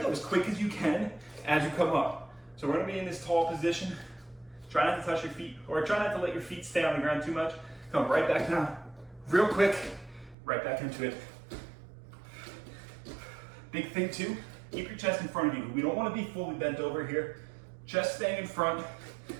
go as quick as you can as you come up. So we're gonna be in this tall position. Try not to touch your feet, or try not to let your feet stay on the ground too much. Come right back down, real quick, right back into it. Big thing too, keep your chest in front of you. We don't wanna be fully bent over here. Chest staying in front,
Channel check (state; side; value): drops out; left; at 10.4 s